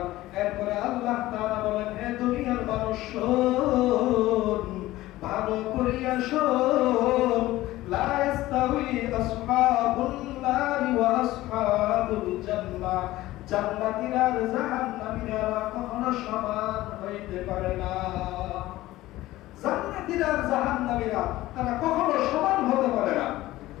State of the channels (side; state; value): right; quieter; 16.8 dB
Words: এরপরে আল্লাহ তাআলা বলেন, হে দুনিয়ার মানুষ শোন, ভালো করিয়া শোন, লা ইস্তাউই আসহাবুন নারি ওয়া আসহাবুল জান্নাহ। জান্নাতীরা আর জাহান্নামীরা কখনো সমান হইতে পারে না। জান্নাতীরা আর জাহান্নামীরা তারা কখনো সমান হতে পারে না।